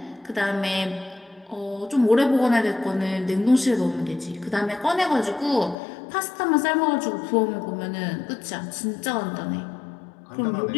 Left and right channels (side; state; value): right; drops out; at 5.8 s